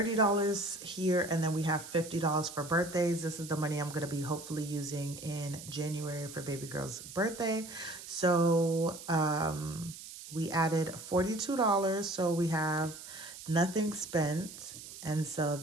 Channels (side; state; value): right; noise; hiss, 13 dB below the sound